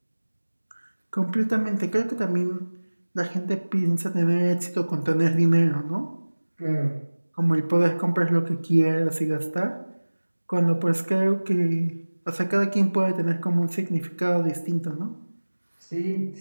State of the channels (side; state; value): both; inverted; correlation -1.00